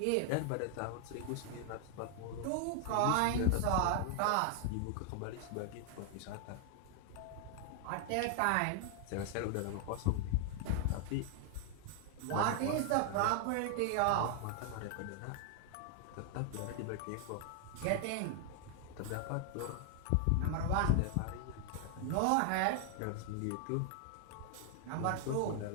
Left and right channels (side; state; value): both; different; correlation 0.00